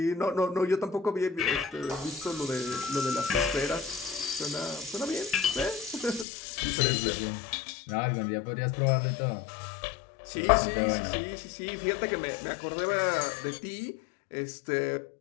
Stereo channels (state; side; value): drops out; right; at 6.2 s